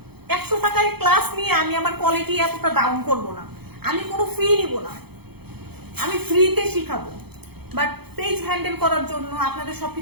100 টাকায় ক্লাস নিয়ে আমি আমার কোয়ালিটি এতটা ডাউন করব না, আমি কোনো ফি নিব না, আমি ফ্রিতে শিখাবো। বাট পেজ হ্যান্ডেল করার জন্য, আপনাদের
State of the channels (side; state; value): left; late; 0.97 ms